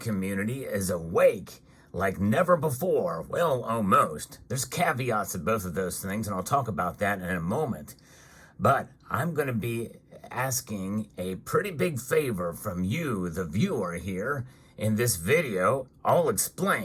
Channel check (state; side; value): identical; both; correlation 1.00